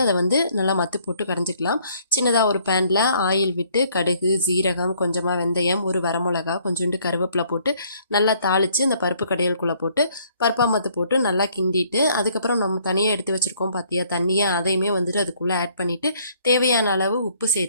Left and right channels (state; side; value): inverted; both; correlation -0.63